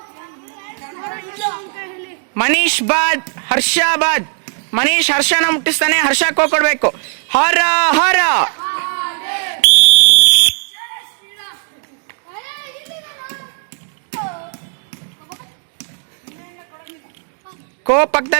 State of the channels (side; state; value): left; silent; 64 dB below the other